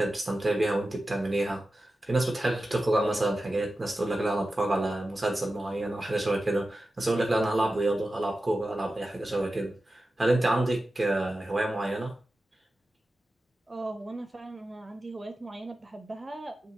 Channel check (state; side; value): normal; both; correlation 0.93